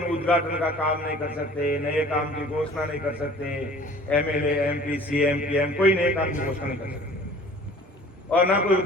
उद्घाटन का काम नहीं कर सकते, नए काम की घोषणा नहीं कर सकते, एमएलए एमपी सीएम पीएम कोई नए काम की घोषणा नहीं कर सकते, और ना कोई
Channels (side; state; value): both; normal; correlation 0.48